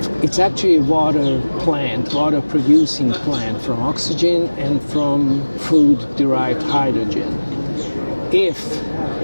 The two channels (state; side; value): inverted; both; correlation -1.00